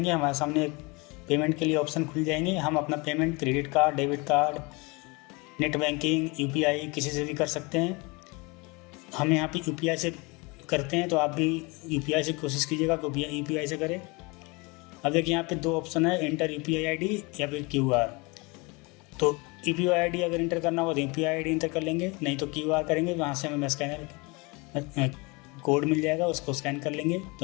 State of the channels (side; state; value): right; quieter; 27.3 dB